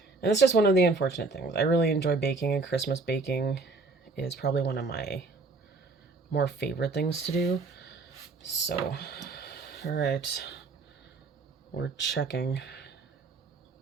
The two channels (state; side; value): quieter; left; 3.8 dB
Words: And it's just one of the unfortunate things. I really enjoy baking, and Christmas baking is probably one of my more favorite things to do. So, all right, we're checking.